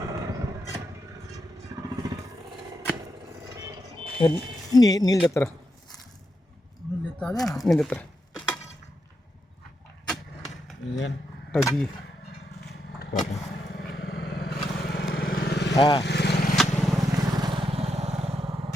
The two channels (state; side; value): normal; both; correlation 0.83